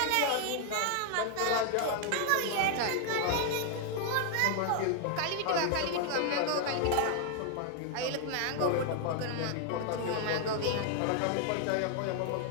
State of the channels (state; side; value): different; both; correlation 0.00